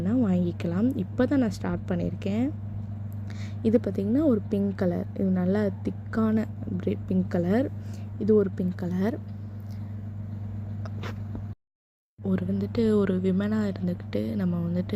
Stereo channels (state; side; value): identical; both; correlation 1.00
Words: வாங்கிக்கலாம். இப்போ தான் நான் ஸ்டார்ட் பண்ணியிருக்கேன். இது பார்த்திங்கன்னா ஒரு பிங்க் கலர், இது நல்லா திக்கான பிங்க் கலர். இது ஒரு பிங்க் கலர். ஒரு விமனாக இருந்துக்கிட்டு நம்ம